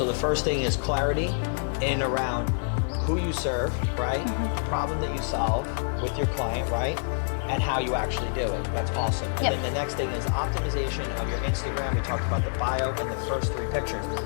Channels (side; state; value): right; silent; digital silence